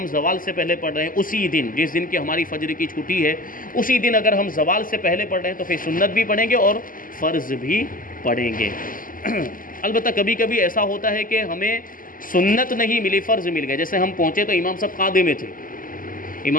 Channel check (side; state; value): right; late; 0.40 ms